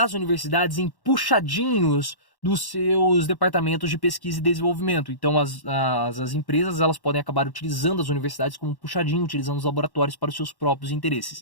universidades em puxadinhos dos seus departamentos de pesquisa e desenvolvimento. Então as empresas elas podem acabar utilizando as universidades como um puxadinho, utilizando os laboratórios para os seus próprios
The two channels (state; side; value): late; right; 1.1 ms